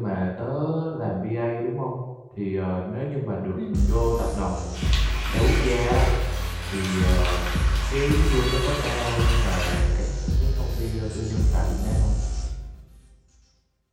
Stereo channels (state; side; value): identical; both; correlation 1.00